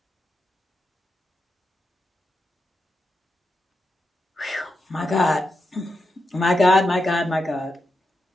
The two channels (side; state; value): both; normal; correlation 0.87